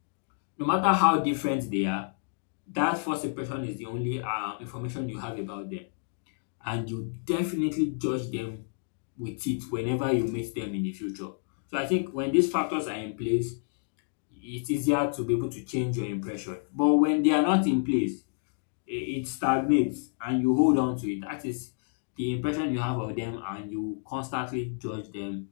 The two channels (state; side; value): silent; right; digital silence